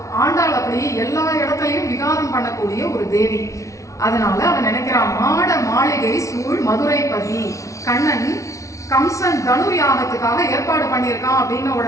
ஆண்டாள் அப்படி எல்லா இடத்துலயும் விகாரம் பண்ணக்கூடிய ஒரு தேவி. அதனால அவன் நினைக்கிறான், மாட மாளிகை சூழ் மதுரைப்பதி. கண்ணன் கம்சன் தனுர் யாகத்துக்காக ஏற்பாடு பண்ணியிருக்கான் அப்படின்னு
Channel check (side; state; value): right; late; 0.15 ms